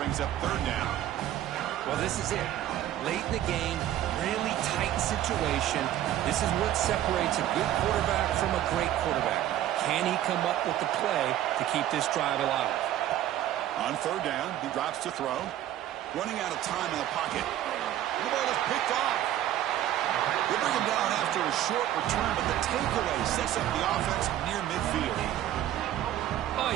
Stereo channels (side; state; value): left; quieter; 12.5 dB